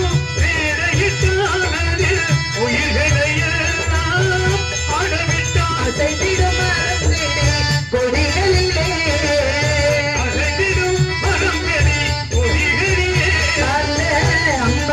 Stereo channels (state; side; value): identical; both; correlation 1.00